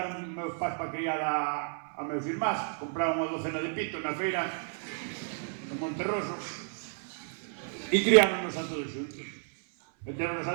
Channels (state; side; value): silent; left; 57 dB below the other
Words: meus pais para criar a meus irmás. Compraron unha docena de pitos na feira de Monterroso e criáronos a todos xuntos. Meteronos